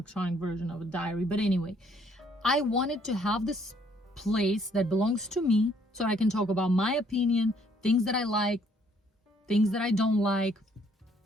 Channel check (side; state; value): both; normal; correlation 0.65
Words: version of a diary, but anyway, I wanted to have this place that belongs to me so I can talk about my opinion, things that I like, things that I don't like,